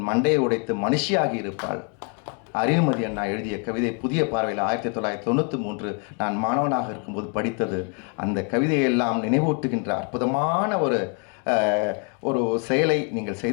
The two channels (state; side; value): quieter; right; 36.5 dB